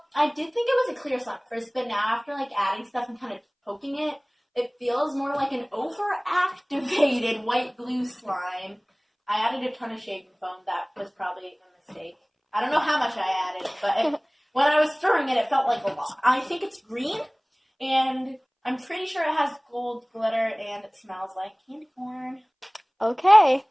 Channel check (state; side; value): identical; both; correlation 1.00